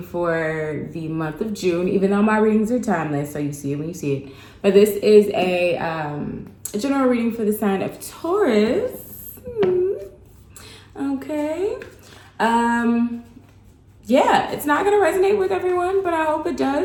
for the month of June, even though my readings are timeless, so you see it when you see it. But this is a general reading for the sign of Taurus. Okay. Yeah, it's not going to resonate with everyone, but I hope it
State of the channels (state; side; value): identical; both; correlation 1.00